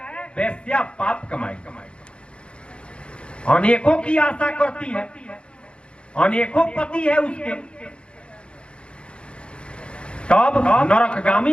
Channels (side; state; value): right; late; 0.057 ms